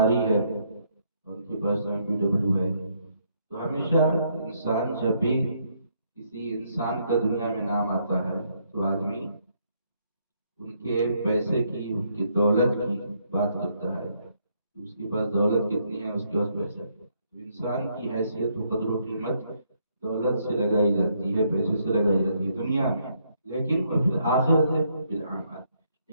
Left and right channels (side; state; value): both; inverted; correlation -0.72